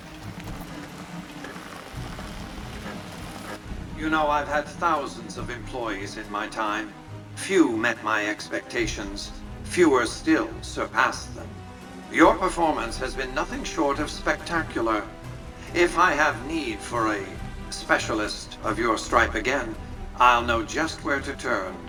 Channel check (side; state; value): both; identical; correlation 1.00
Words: You know, I've had thousands of employees in my time. Few met my expectations. Fewer still surpassed them. Your performance has been nothing short of spectacular. If I have need for a specialist of your stripe again, I'll know just where to turn.